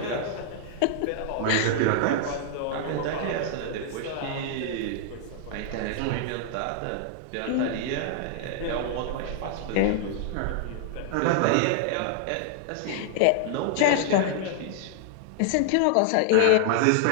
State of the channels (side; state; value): both; different; correlation -0.01